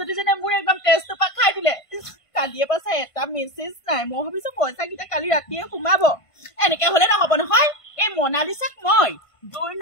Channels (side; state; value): right; late; 1.5 ms